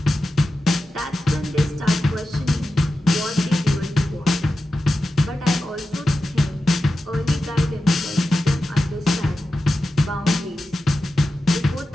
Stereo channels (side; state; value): both; normal; correlation 0.92